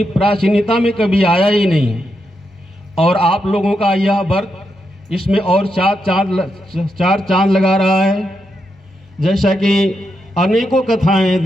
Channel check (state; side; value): normal; both; correlation 0.84